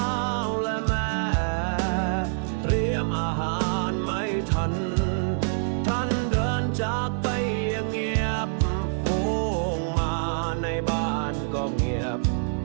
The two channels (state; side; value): silent; left; 61 dB below the other